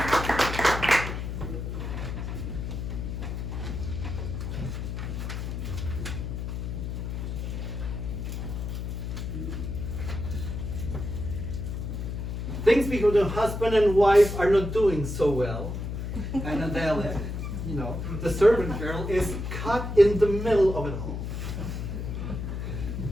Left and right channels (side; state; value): left; noise; hum, 4 dB below the sound